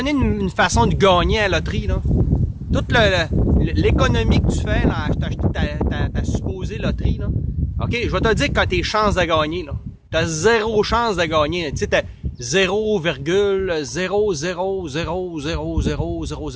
une façon de gagner à la loterie, là. Toute l'économie que tu fais, là, acheter ta supposée loterie, là. OK, je vais te dire quand tes chances de gagner, là. T'as zéro chance de gagner. Tu sais, t'as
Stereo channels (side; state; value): both; identical; correlation 1.00